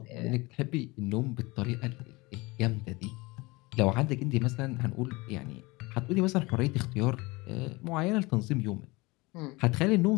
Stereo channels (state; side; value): quieter; right; 23.7 dB